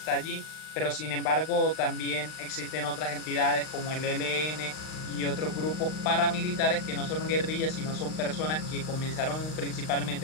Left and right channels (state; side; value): late; right; 39 ms